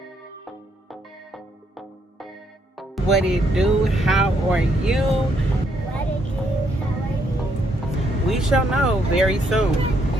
What it do? How are you? What it do? How are you? We shall know very soon.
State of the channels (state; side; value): normal; both; correlation 0.73